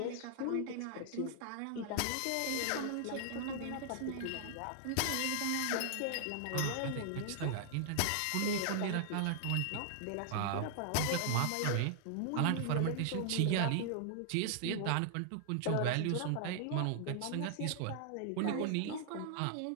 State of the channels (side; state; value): both; different; correlation 0.00